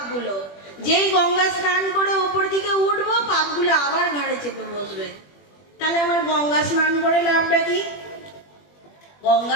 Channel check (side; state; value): right; late; 21 ms